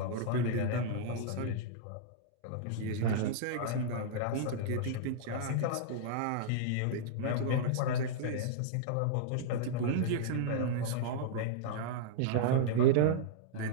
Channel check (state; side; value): different; both; correlation -0.02